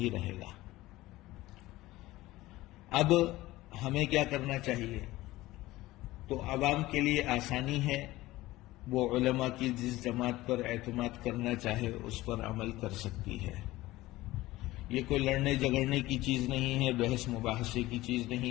رہے گا۔ اب ہمیں کیا کرنا چاہیے؟ تو عوام کے لیے آسانی ہے، وہ علماء کی جس جماعت پر اعتماد کرنا چاہے اس پر عمل کر سکتی ہے۔ یہ کوئی لڑنے جھگڑنے کی چیز نہیں ہے، بحث مباحثے کی چیز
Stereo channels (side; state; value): right; quieter; 17.7 dB